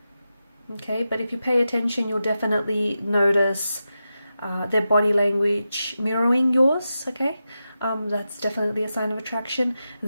Okay, but if you pay attention, you'll definitely notice their body language mirroring yours, okay? That's definitely a sign of attraction.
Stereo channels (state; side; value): inverted; both; correlation -0.90